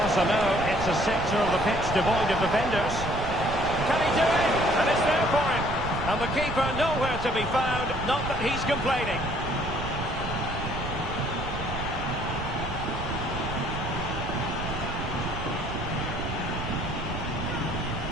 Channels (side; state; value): right; noise; rumble, 7 dB below the sound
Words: know it's a sector of the pitch devoid of defenders. Can he do it? And it's there for him. And the keeper nowhere to be found, not that he's complaining.